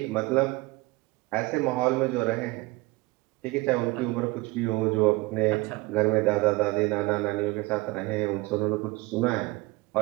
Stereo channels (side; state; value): left; quieter; 22.4 dB